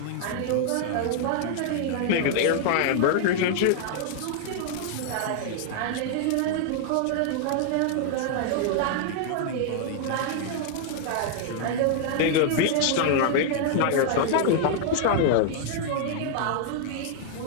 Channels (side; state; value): both; different; correlation 0.00